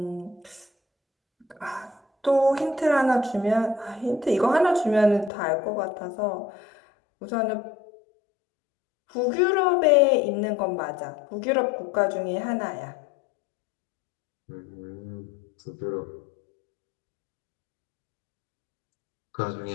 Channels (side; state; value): right; drops out; at 5.3 s